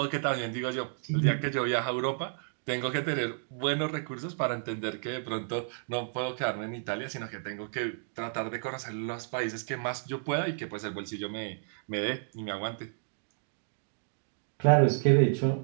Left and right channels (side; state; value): left; silent; digital silence